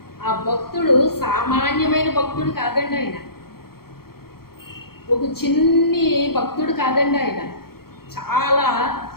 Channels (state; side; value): late; right; 0.94 ms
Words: ఆ భక్తుడు సామాన్యమైన భక్తుడు కాదండి. ఆయన ఒక చిన్ని భక్తుడు కాదండి. ఆయన చాలా